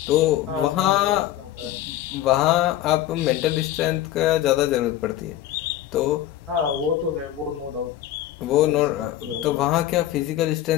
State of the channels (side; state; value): right; quieter; 12.8 dB